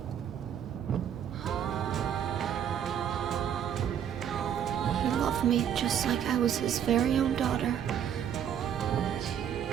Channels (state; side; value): quieter; left; 9.2 dB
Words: me just like I was his very own daughter.